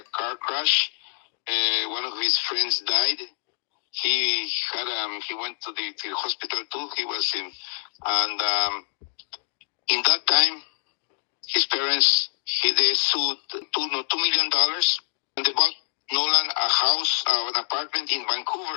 car crash. One of his friends died. He went to the hospital too. He was in that time, his parents they sued $2 million, and they bought Nolan a house, an apartment in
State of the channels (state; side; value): silent; right; 57 dB below the other